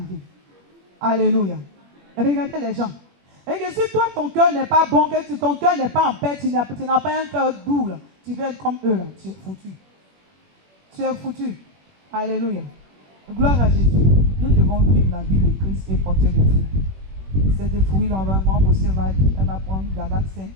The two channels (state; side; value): late; left; 21 ms